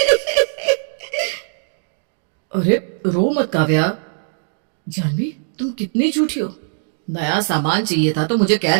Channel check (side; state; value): left; silent; 60 dB below the other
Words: अरे रो मत काव्या। जानवी, तुम कितनी झूठी हो। नया सामान चाहिए था तो मुझे कह